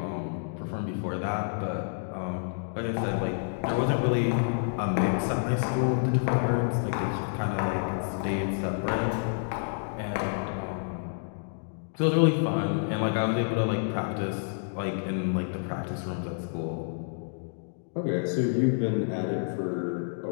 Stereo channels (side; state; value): right; silent; digital silence